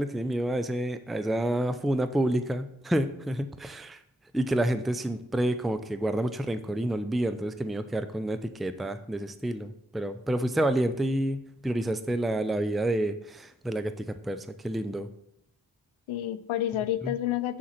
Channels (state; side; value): normal; both; correlation 0.79